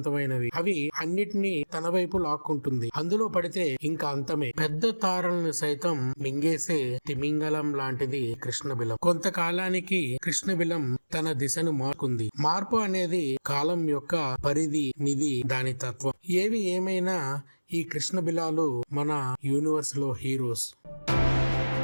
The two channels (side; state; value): both; inverted; correlation -1.00